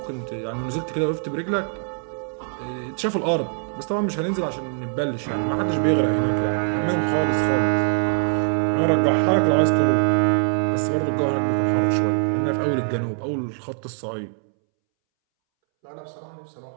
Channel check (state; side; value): silent; left; 63 dB below the other